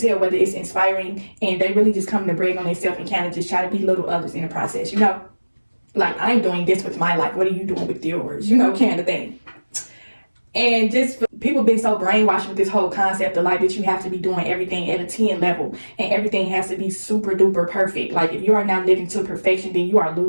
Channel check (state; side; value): inverted; both; correlation -1.00